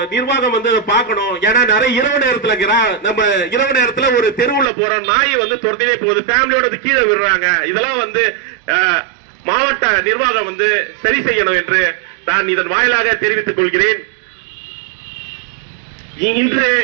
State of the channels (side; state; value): left; drops out; at 4.7 s